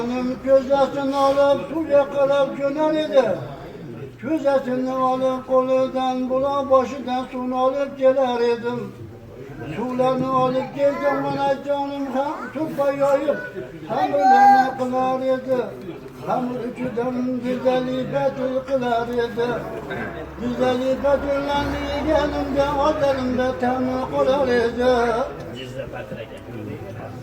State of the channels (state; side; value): identical; both; correlation 1.00